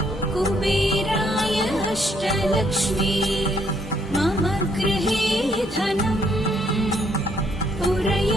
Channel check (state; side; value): normal; both; correlation 0.70